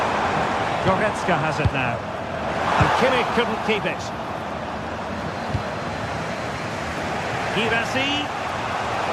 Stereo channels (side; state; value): both; identical; correlation 1.00